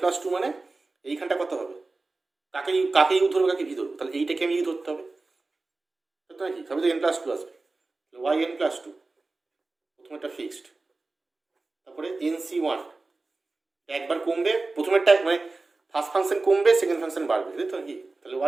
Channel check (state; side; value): quieter; left; 3.5 dB